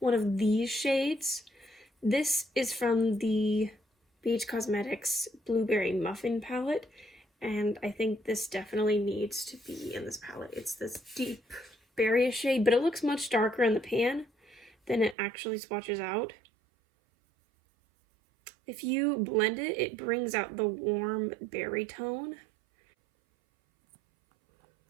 one of these shades. This is from the BH Cosmetics Blueberry Muffin palette, and I think this definitely needs to be in this palette. It's this deep berry shade, but it looks much darker in the pan than it actually swatches out. If you blend it, it brings out the warm berry tone.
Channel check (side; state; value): left; drops out; at 15.2 s